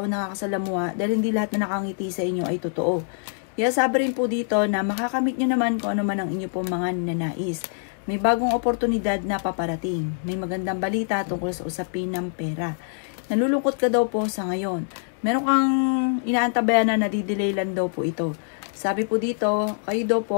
na nakakasalamuha dahil hindi lahat na nakangiti sa inyo ay totoo. Kaya sabi rin po dito na makakamit nyo naman kung ano man ang inyo pong mga ninanais. May bagong oportunidad na paparating. May magandang balita tungkol sa usapin ng pera. Nalulungkot ka daw po sa ngayon. Meron kang inaantabayan na nadidelay lang daw po ito. Sabi po dito, kayo daw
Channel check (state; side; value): silent; right; 62 dB below the other